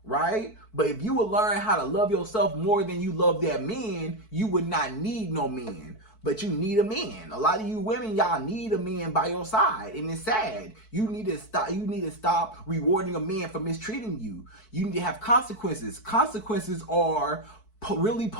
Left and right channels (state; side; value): late; right; 4.6 ms